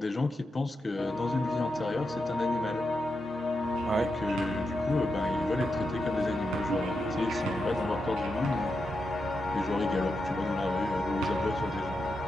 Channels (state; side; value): normal; both; correlation 0.86